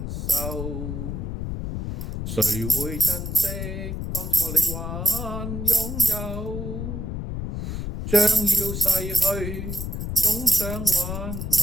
受，誰會珍惜當初你還擁有？將要逝去，總想挽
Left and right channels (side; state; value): left; noise; rumble, 4 dB below the sound